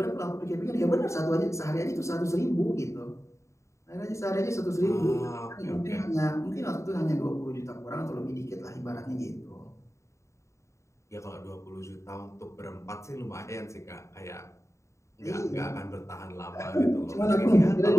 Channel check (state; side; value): late; right; 0.14 ms